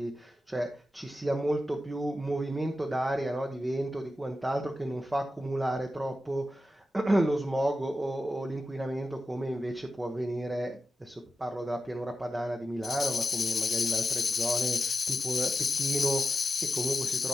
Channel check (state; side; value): normal; both; correlation 0.91